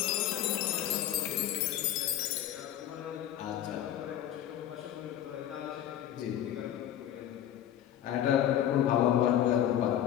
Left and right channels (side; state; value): right; quieter; 11.4 dB